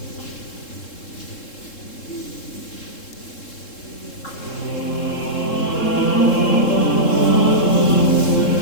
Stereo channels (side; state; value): right; late; 3.7 ms